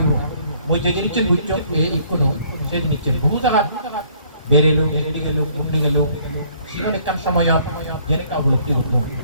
মই যে জিনিসছেন বুঝছো এই কোনো সেই জিনিসছেন বহু জায়গা বেরেলো এগিয়ে গেল ঘুমনি গেল সেখানে কান সময় জেনে কা উপলব্ধি করবো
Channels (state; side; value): inverted; both; correlation -0.61